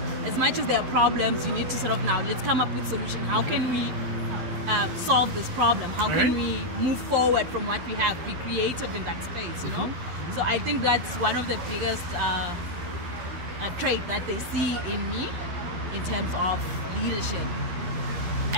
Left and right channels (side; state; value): left; late; 11 ms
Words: As much as there are problems, you need to sort of now, let's come up with solution. How can we solve this problem? How can we move forward from what we have? Be creative in that space, you know? So I think that's one of the biggest trait that they see in me in terms of leadership.